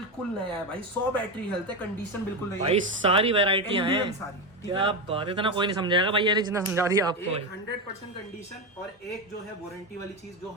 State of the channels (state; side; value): normal; both; correlation 0.13